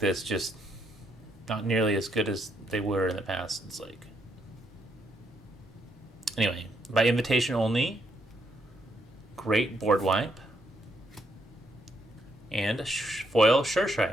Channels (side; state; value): both; normal; correlation 0.75